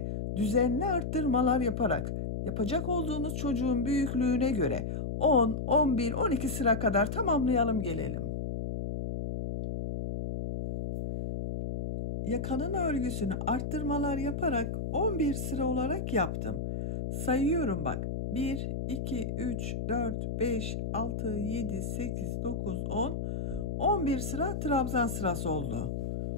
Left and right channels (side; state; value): left; noise; hum, 3 dB below the sound